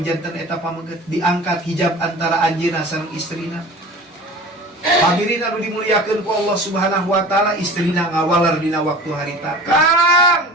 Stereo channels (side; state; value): both; normal; correlation 0.39